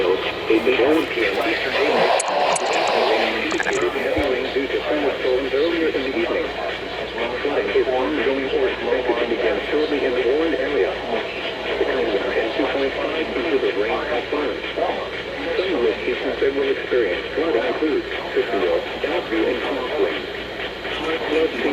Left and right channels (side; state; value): both; identical; correlation 1.00